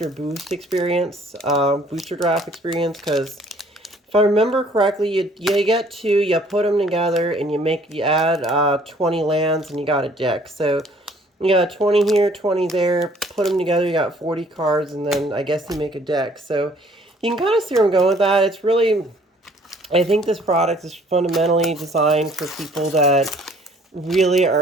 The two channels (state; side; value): normal; both; correlation 0.58